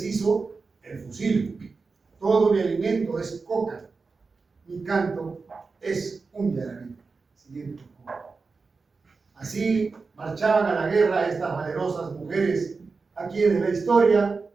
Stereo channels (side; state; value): left; quieter; 4.4 dB